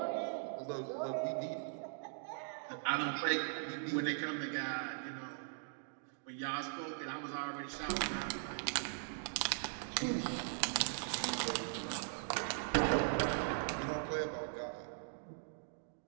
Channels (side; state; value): left; silent; digital silence